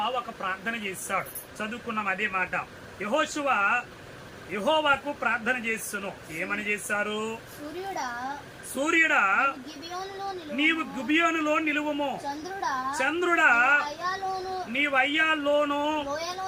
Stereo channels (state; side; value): identical; both; correlation 1.00